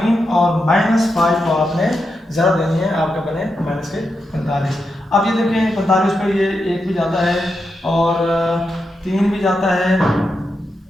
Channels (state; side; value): normal; both; correlation 0.86